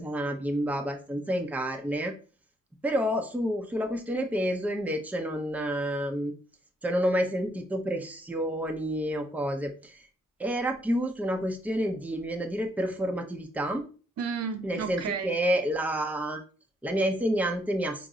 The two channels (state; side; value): normal; both; correlation 0.74